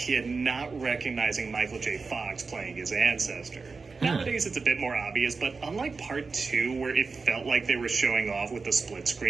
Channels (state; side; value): quieter; left; 4.5 dB